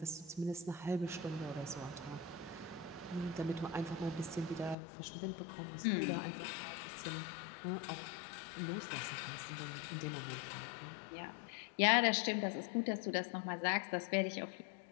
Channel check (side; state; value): right; drops out; at 4.8 s